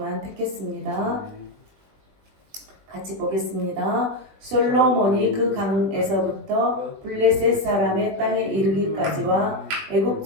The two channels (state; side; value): late; left; 20 ms